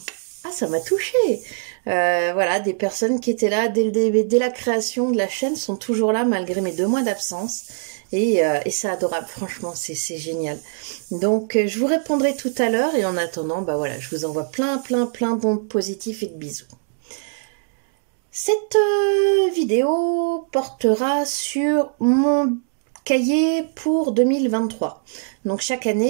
touchée. Voilà, des personnes qui étaient là dès la création de la chaîne sont toujours là malgré mes 2 mois d'absence. Et c'est adorable, franchement, c'est génial. Donc, je vous répondrai tout à l'heure et en attendant, bah voilà, je vous envoie plein d'ondes positifs et de bisous. Cette vidéo portera sur mon cahier pour 2023. Donc chaque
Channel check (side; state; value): left; silent; digital silence